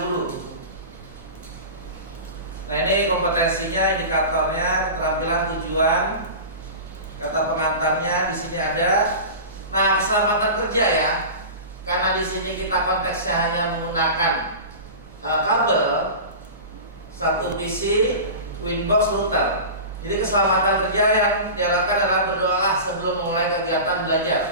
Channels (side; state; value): both; inverted; correlation -0.31